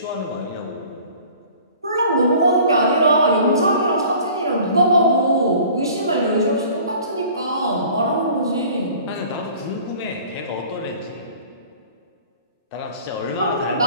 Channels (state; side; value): inverted; both; correlation -0.48